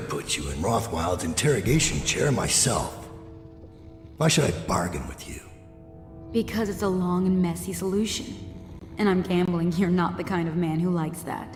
put you in Rothwild's interrogation chair myself. Why should I bargain with you? Because it's a long and messy solution. And I'm gambling you're not the kind of man who likes that.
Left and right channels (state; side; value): identical; both; correlation 1.00